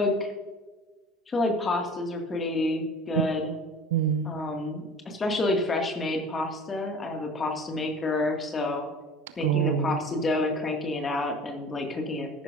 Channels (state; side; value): normal; both; correlation 0.42